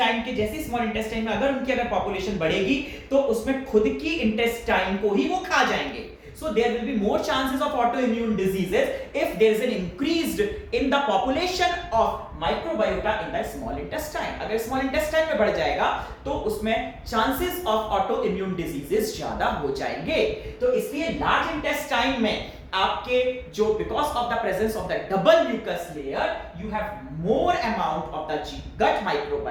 के जैसे स्मॉल इंटेस्टाइन में अगर उनकी अगर पॉपुलेशन बढ़ेगी तो उसमें खुद की इंटेस्टाइन को ही वो खा जाएंगे. So there will be more chances of autoimmune diseases if there is an increased in the population of microbiota in the small intestine. अगर small intestine में बढ़ जाएगा तो उसमें chances of autoimmune diseases ज्यादा हो जाएंगे. तो इसलिए large intestine में आपके जो because of the presence of the double mucus layer you have more amount of the gut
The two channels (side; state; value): both; identical; correlation 1.00